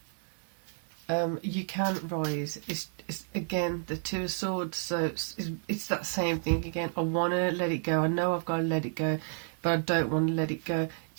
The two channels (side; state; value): left; silent; digital silence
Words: you can rise. It's again the Two of Swords, so it's that same thing again. I want to let it go. I know I've got to let it go, but I don't want to let it go.